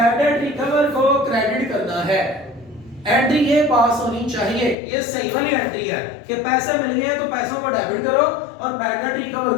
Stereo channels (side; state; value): right; drops out; at 4.8 s